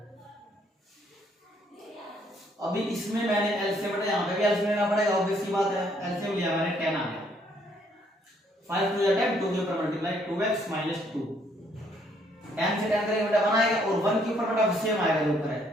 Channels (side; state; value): both; normal; correlation 0.67